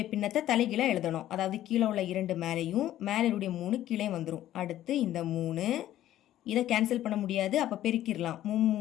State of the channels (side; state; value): right; quieter; 13.0 dB